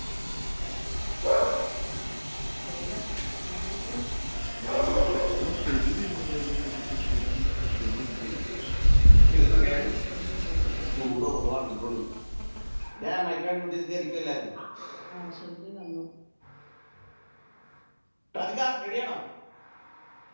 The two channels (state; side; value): inverted; both; correlation -1.00